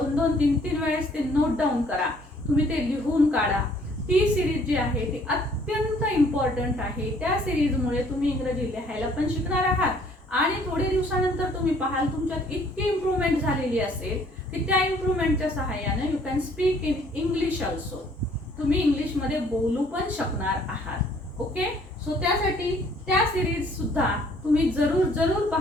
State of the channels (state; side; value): normal; both; correlation 0.60